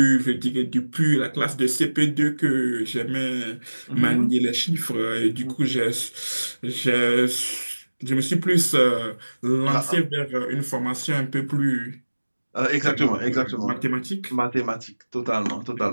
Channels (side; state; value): both; inverted; correlation -1.00